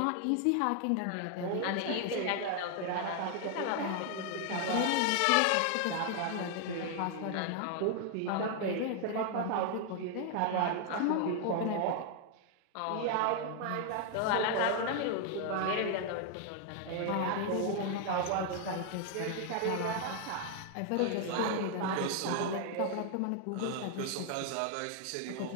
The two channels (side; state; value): both; different; correlation 0.00